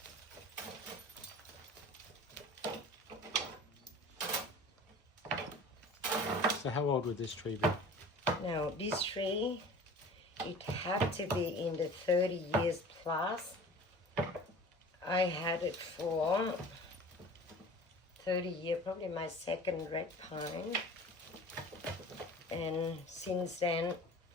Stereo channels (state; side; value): normal; both; correlation 0.42